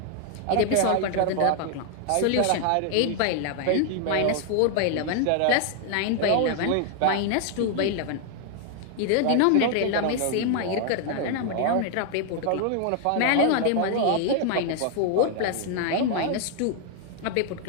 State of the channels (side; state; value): both; different; correlation 0.00